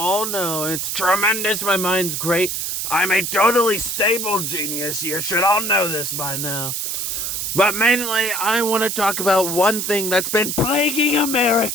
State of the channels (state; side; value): noise; right; hiss, 2 dB below the sound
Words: know. It's tremendous, my mind's great. I'm a totally stable genius, you should all know this by now. But mainly, I want to talk about one thing that's been plaguing